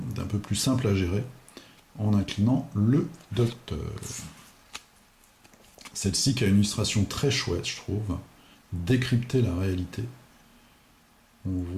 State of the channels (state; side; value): identical; both; correlation 1.00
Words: d'un peu plus simple à gérer en inclinant le docteur. Celle-ci qui a une illustration très chouette, je trouve. Décrypter la réalité. On